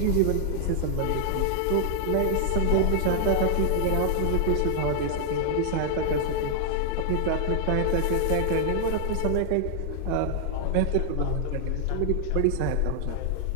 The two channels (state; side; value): different; both; correlation 0.00